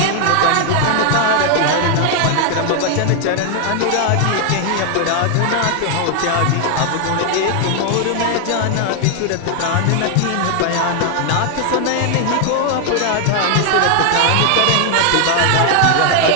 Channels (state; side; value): different; both; correlation 0.00